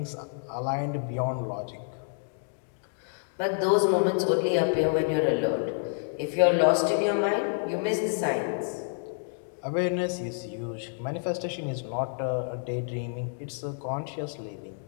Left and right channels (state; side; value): silent; right; digital silence